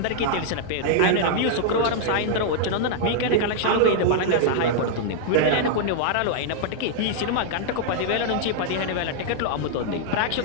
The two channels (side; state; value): both; different; correlation -0.01